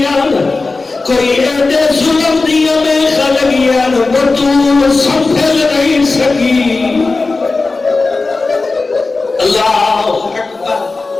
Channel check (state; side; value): quieter; right; 3.7 dB